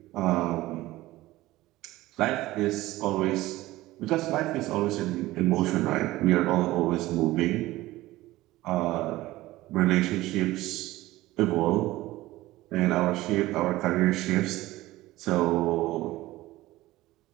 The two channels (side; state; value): left; quieter; 17.5 dB